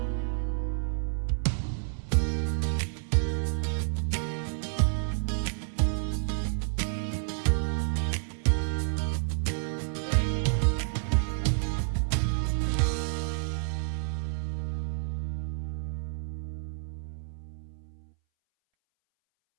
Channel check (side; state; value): left; silent; 58 dB below the other